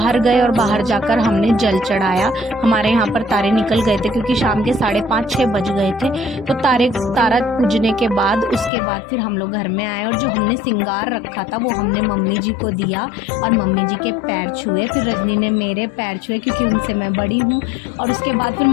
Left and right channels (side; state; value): right; drops out; at 8.7 s